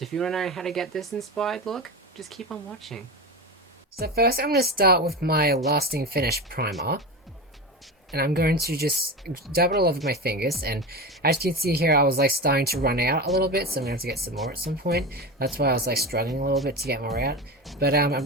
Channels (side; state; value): both; normal; correlation 0.23